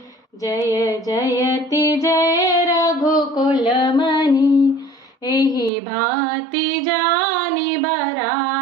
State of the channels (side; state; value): left; drops out; at 5.7 s